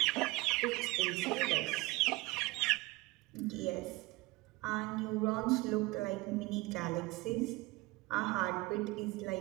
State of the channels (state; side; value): quieter; left; 21.8 dB